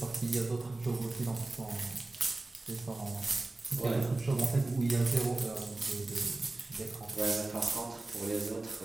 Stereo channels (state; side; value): quieter; left; 3.0 dB